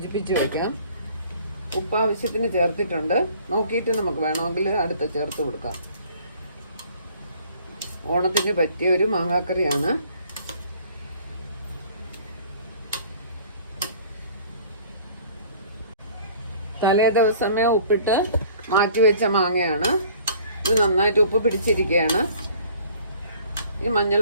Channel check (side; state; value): both; inverted; correlation -0.53